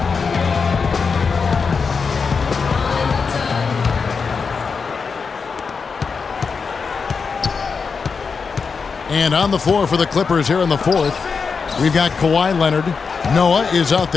And on the floor for the Clippers here in the fourth, we've got Kawhi Leonard. Noah is out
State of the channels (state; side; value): quieter; right; 5.3 dB